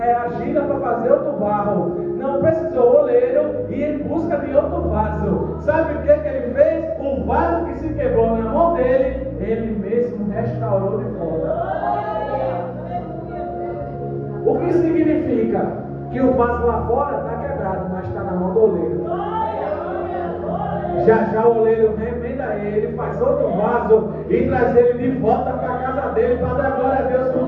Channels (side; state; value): both; identical; correlation 1.00